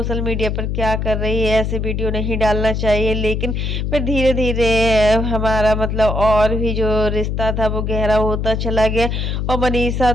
मीडिया पर क्या कर रही है, ऐसे वीडियो नहीं डालना चाहिए। लेकिन फिर धीरे धीरे हमारा मतलब और भी जो रिश्ता था वो गहरा होता चला गया। और मनीषा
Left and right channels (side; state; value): left; noise; hum, 1 dB below the sound